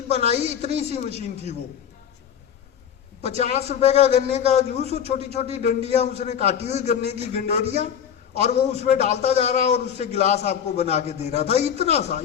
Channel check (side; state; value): right; quieter; 8.6 dB